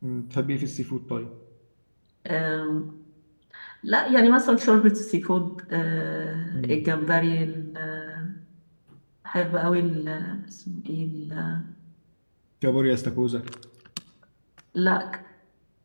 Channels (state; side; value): inverted; both; correlation -1.00